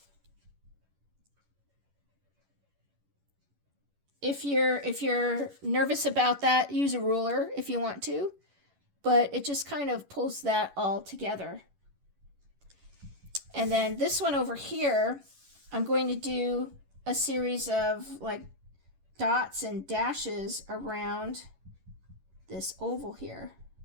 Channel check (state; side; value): late; left; 11 ms